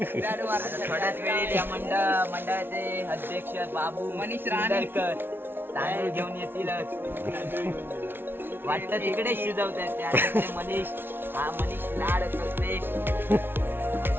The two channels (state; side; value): late; left; 0.11 ms